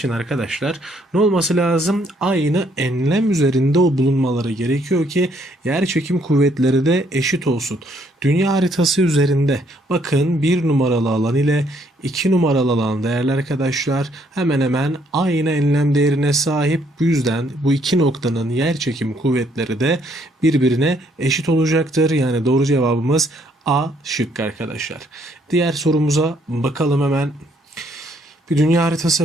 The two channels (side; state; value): both; normal; correlation 0.68